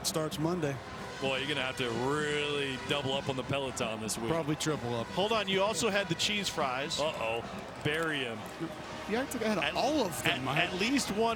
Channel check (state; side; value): identical; both; correlation 1.00